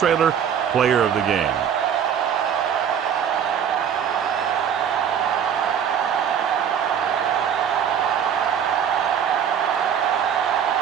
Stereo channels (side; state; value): left; quieter; 8.3 dB